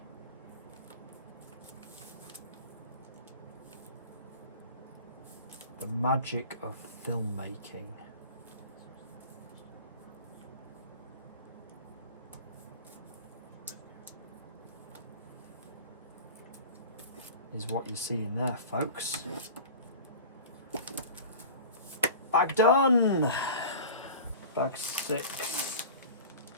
The magic of filmmaking. Is what you're seeing there, folks. Bag done! Bag 6.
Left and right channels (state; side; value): inverted; both; correlation -0.37